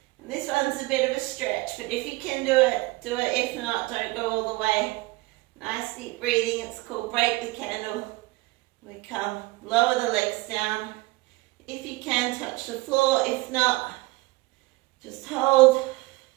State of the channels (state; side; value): quieter; left; 21.8 dB